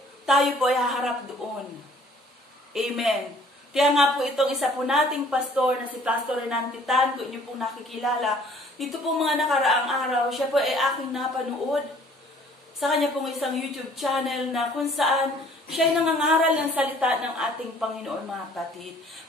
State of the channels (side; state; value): both; normal; correlation 0.56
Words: tayo po ay haharap doon. Amen. Kaya nga po itong isa po nating pastor na si Pastor Renan Titan, kung inyo pong nakikilala, dito po mga nakaraang araw, siya po ay aking napanood sa kanya pong isang YouTube channel na kung saan siya ay nangangaral ng salita ng ating Panginoon, mga kapatid.